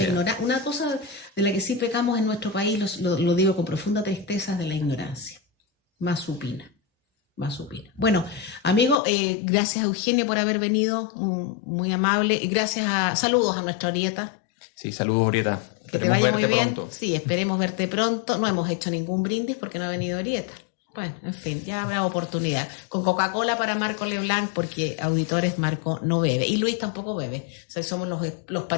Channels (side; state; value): right; drops out; at 9.0 s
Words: ignorancia. Una cosa de la que sí pecamos en nuestro país, lo digo con profunda tristeza, es de la ignorancia. Más supina. Bueno, amigo, gracias a Eugenio por haber venido. Muy amable. Y saludos a nuestra Orieta. Sí, saludos, Orieta. Que te vaya muy bien. Pronto. Sí, esperemos verte pronto. No hemos hecho ningún brindis porque no ha venido Orieta. Bueno, en fin, ya habrá oportunidad. Con Coca-Cola para Marco Leblanc, porque auditores Marco no bebe. Y Luis tampoco bebe. O sea, somos los